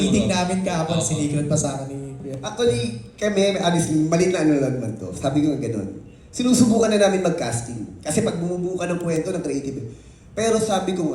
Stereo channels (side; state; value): both; identical; correlation 1.00